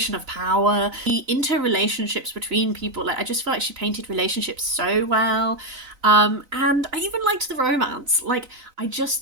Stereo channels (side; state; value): left; late; 4.0 ms